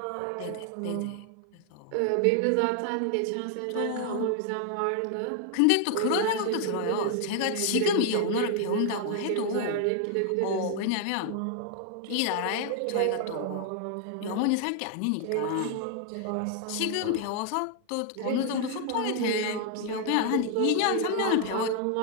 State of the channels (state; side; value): different; both; correlation 0.00